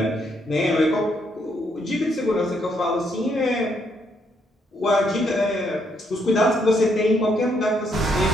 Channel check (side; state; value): both; normal; correlation 0.74